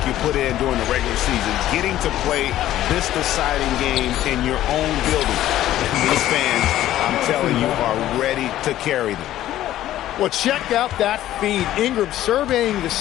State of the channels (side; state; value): right; quieter; 13.4 dB